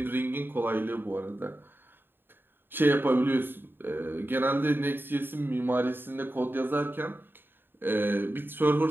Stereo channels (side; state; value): left; late; 0.098 ms